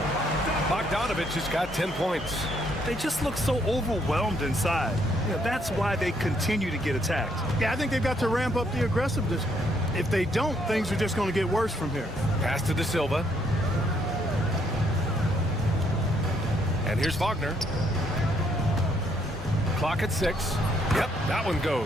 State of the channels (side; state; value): both; normal; correlation 0.71